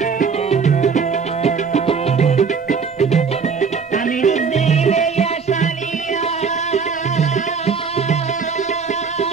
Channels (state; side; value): quieter; left; 5.6 dB